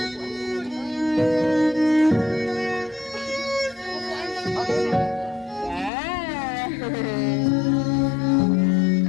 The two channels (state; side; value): drops out; right; at 5.9 s